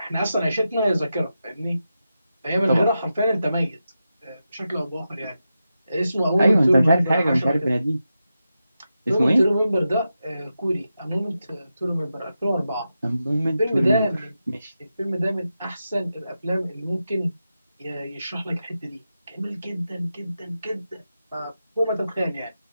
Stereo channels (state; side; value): inverted; both; correlation -0.89